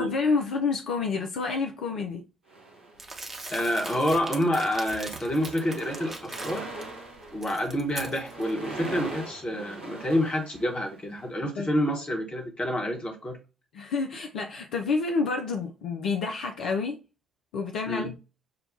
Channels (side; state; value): both; normal; correlation 0.69